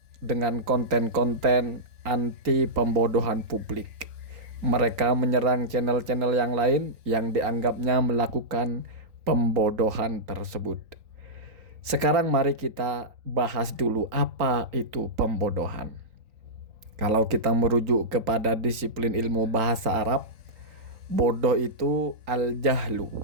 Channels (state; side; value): late; left; 3.9 ms